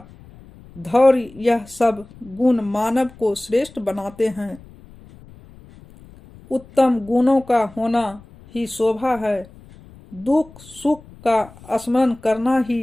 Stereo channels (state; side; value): noise; left; rumble, 22 dB below the sound